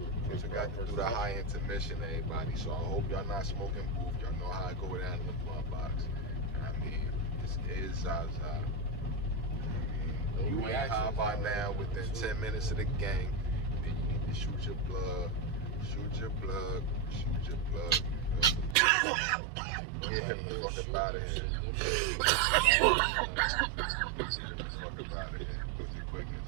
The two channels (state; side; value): drops out; left; at 18.8 s